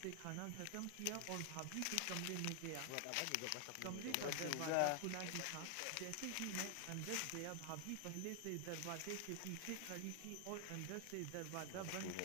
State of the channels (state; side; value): different; both; correlation 0.00